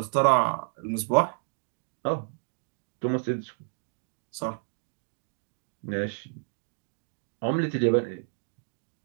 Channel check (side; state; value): left; silent; digital silence